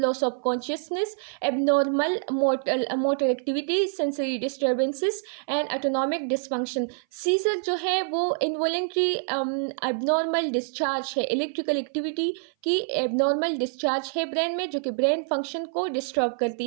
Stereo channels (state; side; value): silent; left; 58 dB below the other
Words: of consciousness, abnormal motor activity, sensory disturbances and autonomic dysfunction. Seizure जो है वो इनवॉलेंट्री एबनॉर्मल डिस्चार्ज है, इलेक्ट्रिकल एक्टिविटी की एबनॉर्मल डिस्चार्ज है ब्रेन में, जो कि ब्रेन फंक्शन को डिस्टर्ब